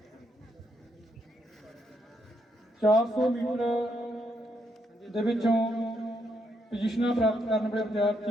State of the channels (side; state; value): both; normal; correlation 0.77